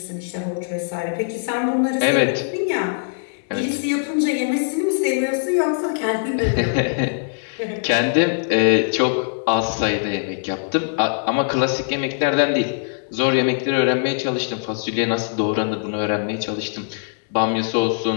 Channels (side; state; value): right; silent; digital silence